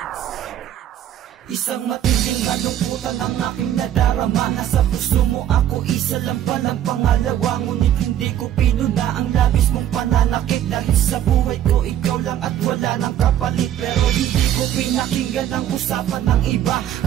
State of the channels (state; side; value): quieter; left; 11.1 dB